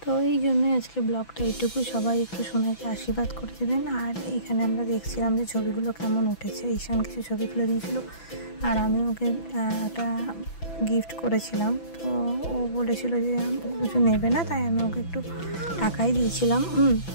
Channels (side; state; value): right; late; 6.0 ms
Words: তো এই জন্যই আজকে ব্লগটা এইটুকু। সবাই একটু সোনাইকে আশীর্বাদ করে দেবেন। আর এইখানে আমরা দেখছিলাম যে ছবিগুলো কেমন উঠেছে। ঈশান কিছু ছবি তুলে দিয়েছিল, আর আমি ওকে একটা গিফট করেছিলাম। তো ও বলেছিল যে কিছু নেবে না, তাই আমি ওকে একটু টাকাই দিয়েছিলাম।